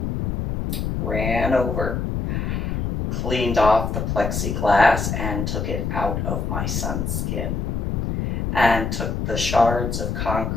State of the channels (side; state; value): left; noise; rumble, 2 dB below the sound